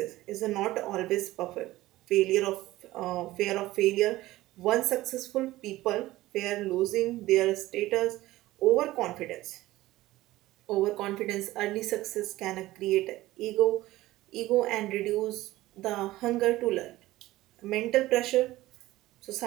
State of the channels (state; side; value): quieter; left; 17.1 dB